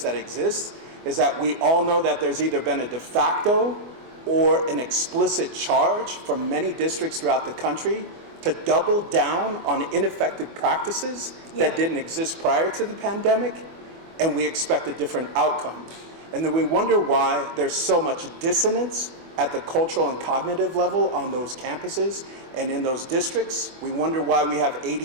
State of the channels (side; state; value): left; late; 24 ms